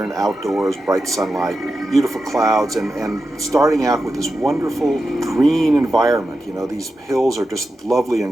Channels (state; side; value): normal; both; correlation 0.90